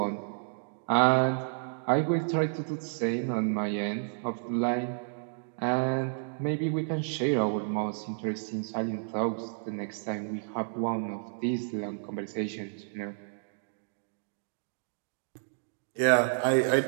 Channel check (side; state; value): left; silent; digital silence